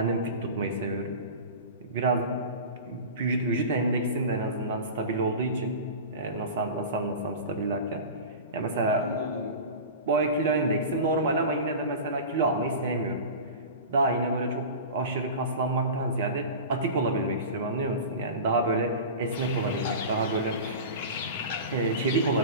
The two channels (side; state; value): both; inverted; correlation -0.32